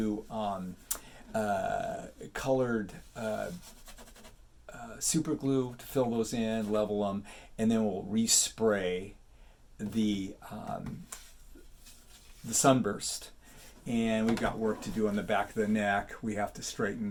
colored super glue to fill those in, level them, and then we'll respray the sunburst. And we've got work to do on the back of the neck. We have to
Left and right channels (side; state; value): both; identical; correlation 1.00